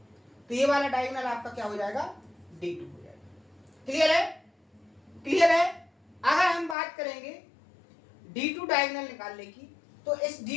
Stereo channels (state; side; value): drops out; right; at 6.8 s